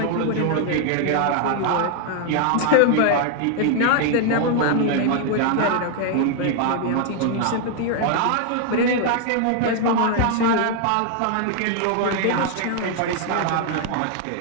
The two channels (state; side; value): different; both; correlation 0.00